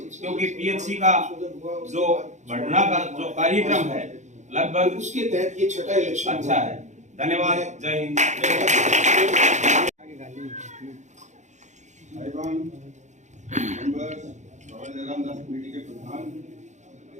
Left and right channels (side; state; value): left; late; 0.34 ms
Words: क्योंकि पीएचसी का जो बढ़ना का जो कार्यक्रम है लगभग उसके तहत ये छठा इलेक्शन अच्छा है। धन्यवाद। जय हिंद। रामदास कमेटी के प्रधान,